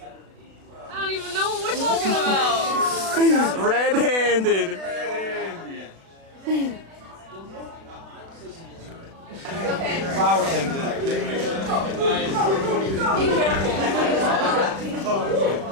I don't even know what we're talking about. Red-handed. Flower comes in. Be careful.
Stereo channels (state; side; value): late; left; 36 ms